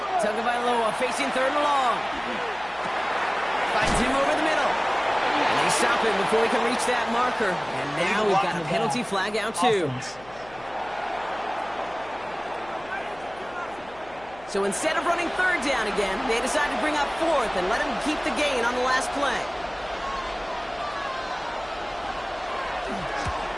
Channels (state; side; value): noise; left; hum, 23 dB below the sound